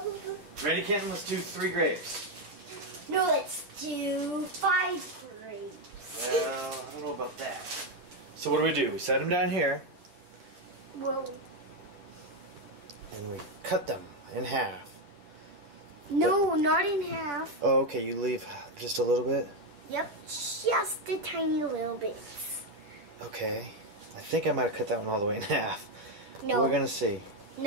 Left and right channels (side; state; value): left; late; 10 ms